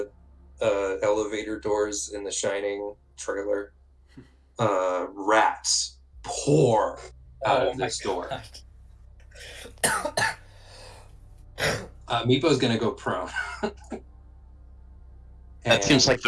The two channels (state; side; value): identical; both; correlation 1.00